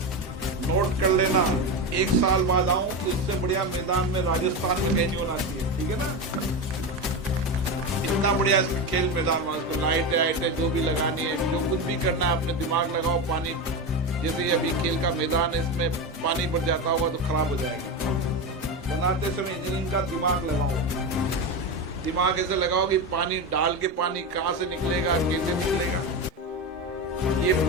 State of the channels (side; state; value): both; normal; correlation 0.18